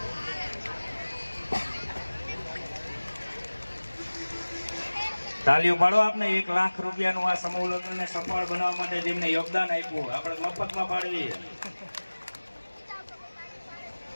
તાલીઓ પાડો આપને. 1 લાખ રૂપિયાનું આ સમૂહ લગ્નને સફળ બનાવવા માટે જેમને યોગદાન આપ્યું આપણે મફતમાં પાડવી.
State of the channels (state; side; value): inverted; both; correlation -1.00